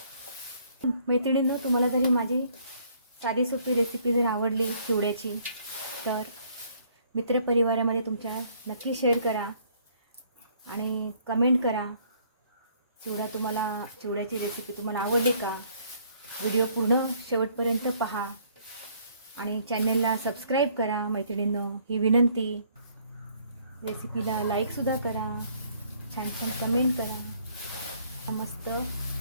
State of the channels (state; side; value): inverted; both; correlation -0.63